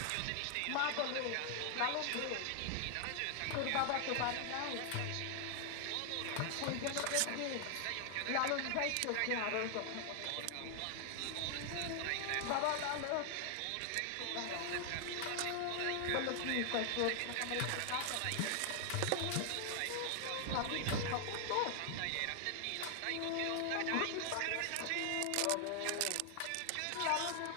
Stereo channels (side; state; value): both; different; correlation 0.00